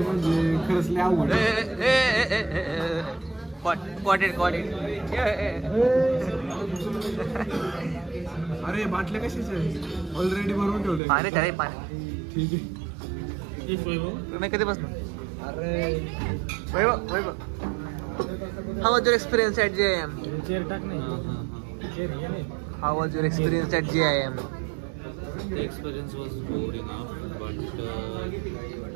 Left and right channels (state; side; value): drops out; left; at 11.0 s